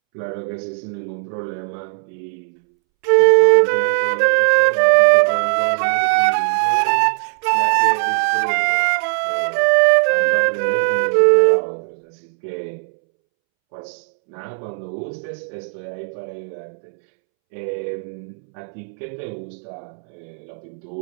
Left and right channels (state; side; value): silent; left; 67 dB below the other